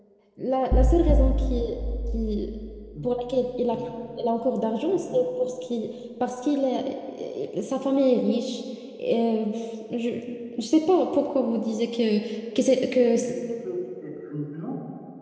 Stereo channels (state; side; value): identical; both; correlation 1.00